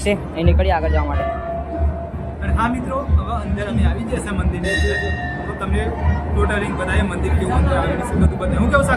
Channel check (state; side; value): identical; both; correlation 1.00